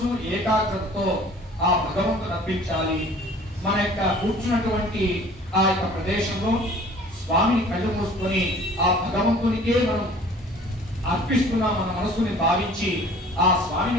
ఏకాగ్రతతో ఆ భగవంతుని అర్పించాలి. మన యొక్క కూర్చున్నటువంటి ఆ యొక్క ప్రదేశంలో స్వామిని కళ్ళు మూసుకొని ఆ భగవంతునికే మనం అర్పిస్తున్నాం మన మనసుని భావించి ఆ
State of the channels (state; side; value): normal; both; correlation 0.49